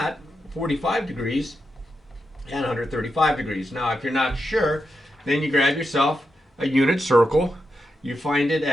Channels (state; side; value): normal; both; correlation 0.86